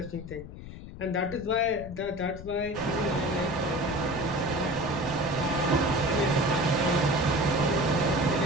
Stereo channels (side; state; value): left; noise; rumble, 13 dB below the sound